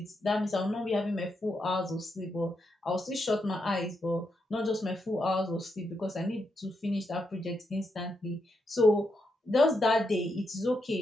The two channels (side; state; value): both; normal; correlation 0.82